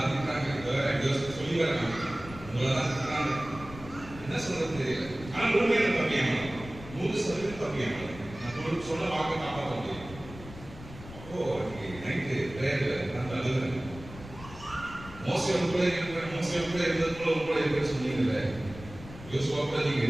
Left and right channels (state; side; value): noise; left; rumble, 15 dB below the sound